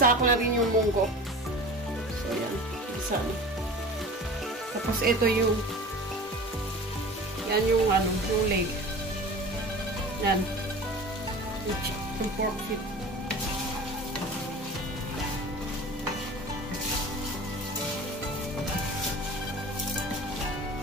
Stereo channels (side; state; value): both; normal; correlation 0.37